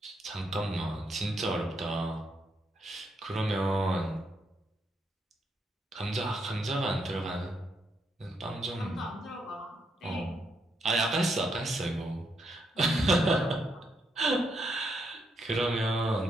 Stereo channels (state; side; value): normal; both; correlation 0.78